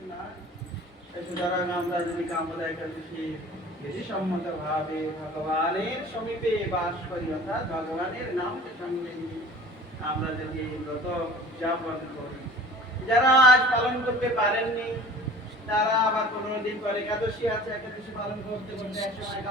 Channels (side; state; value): both; normal; correlation 0.44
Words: না। সুতরাং আমরা যদি কামনা একাদশী বেশি সম্মত ভাবে ভগবানের সমীপে বাস করি, অর্থাৎ ভগবানের নামকে সঙ্গে নিয়ে আমরা যদি এই ব্রত উদযাপন করি, যারা আজ পালন করতে পারেননি তারা আবার 15 দিন পরে একাদশী আছে, একাদশী পালন করতে করতে একসময়